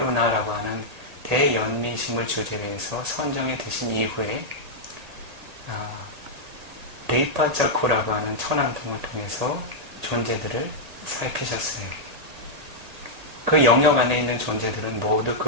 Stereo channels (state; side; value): late; left; 1.8 ms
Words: 하는 대연민심을 주제로 해서 선정해 드신 이후에 데이파자쿠라고 하는 천안통을 통해서 존재들을 살피셨어요. 그 영역 안에 있는 존재들은 모두